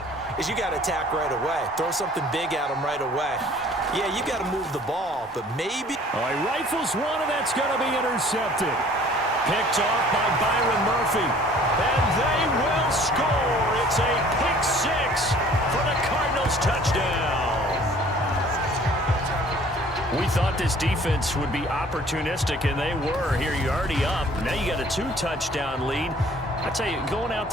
is you got to attack right away. Throw something big at them right away. Yeah, you got to move the ball, but maybe... Oh, he rifles one, and that's going to be intercepted. Picked off by Byron Murphy. And they will score. It's a pick 6 for the Cardinals touchdown. We thought this defense would be opportunistic, and they were. Here, you're already up. Now you got a 2-touchdown lead. I tell you, going out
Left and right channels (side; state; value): both; normal; correlation 0.53